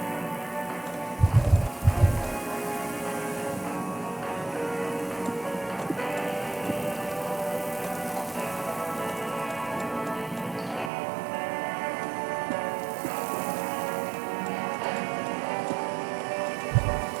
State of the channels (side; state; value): left; drops out; at 10.9 s